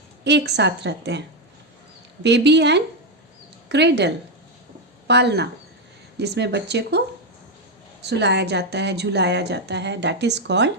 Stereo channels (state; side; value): normal; both; correlation 0.05